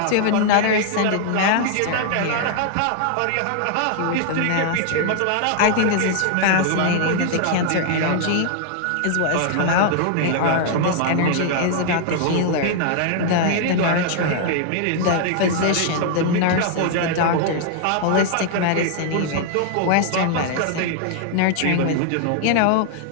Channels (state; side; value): different; both; correlation 0.00